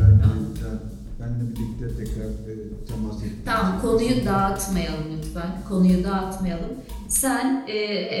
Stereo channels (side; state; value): both; identical; correlation 1.00